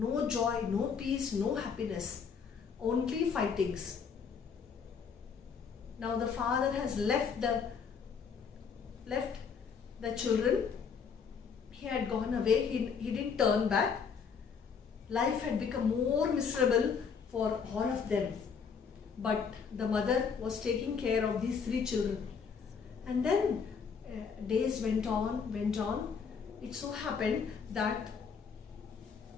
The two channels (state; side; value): quieter; right; 6.2 dB